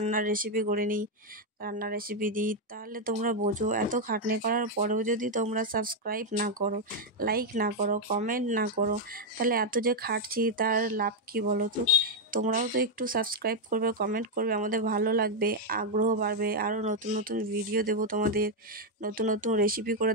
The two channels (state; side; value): normal; both; correlation 0.00